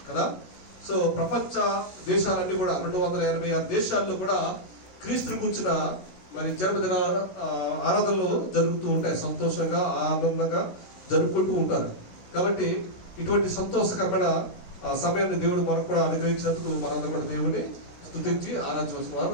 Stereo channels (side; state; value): right; late; 16 ms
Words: కదా. సో ప్రపంచ దేశాలన్నీ కూడా 286 దేశాల్లో కూడా క్రీస్తుని కూర్చున్న మరి జన్మదిన ఆరాధనలు జరుగుతూ ఉంటాయి. సంతోషంగా ఆనందంగా జరుపుకుంటూ ఉంటారు. కాబట్టి ఇటువంటి సంతోషకరమైన సమయాన్ని దేవుడు మనకు కూడా అనుగ్రహించినందుకు మనందరూ కూడా దేవుడిని స్తుతించి ఆరాధించవలసిన